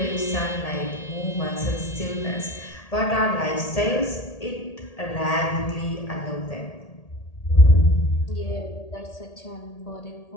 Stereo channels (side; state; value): right; late; 1.8 ms